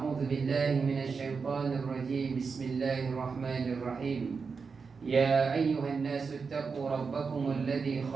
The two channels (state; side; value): quieter; left; 5.2 dB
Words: بالله من الشيطان الرجيم، بسم الله الرحمن الرحيم. يا أيها الناس اتقوا ربكم الذي